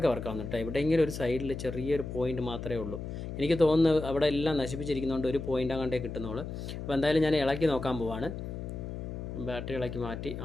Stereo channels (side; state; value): left; noise; hum, 7 dB below the sound